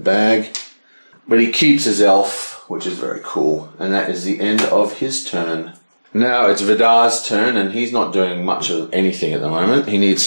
But he keeps his elf, which is very cool. And that is the end of his turn. Now it's Vidar's turn, and he's not doing much of anything at the moment. He needs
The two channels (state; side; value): inverted; both; correlation -1.00